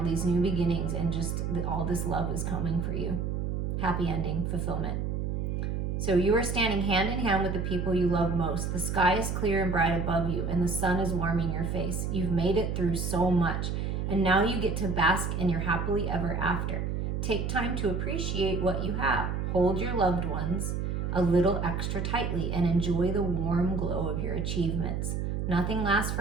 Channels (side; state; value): right; noise; hum, 1 dB below the sound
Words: these new beginnings and just all this love is coming for you. Happy ending, fulfillment. So you are standing hand in hand with the people you love most. The sky is clear and bright above you, and the sun is warming your face. You've made it through so much, and now you get to bask in your happily ever after. Take time to appreciate what you have. Hold your loved ones a little extra tightly and enjoy the warm glow of your achievements. Nothing lasts